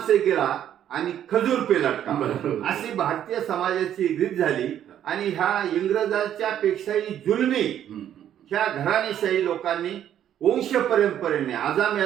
से गिरा आणि खजूर पे लटका, अशी भारतीय समाजाची रीत झाली. आणि ह्या इंग्रजांच्या पेक्षाही जुलमी ह्या घराणेशाही लोकांनी वंश परंपरेने,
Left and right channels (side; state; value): left; quieter; 10.5 dB